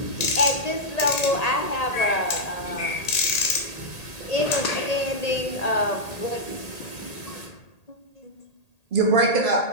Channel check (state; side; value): late; right; 1.8 ms